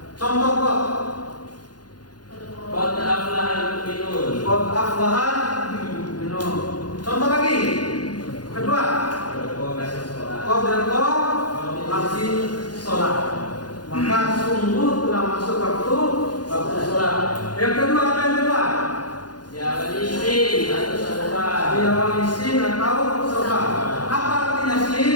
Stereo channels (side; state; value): right; late; 0.69 ms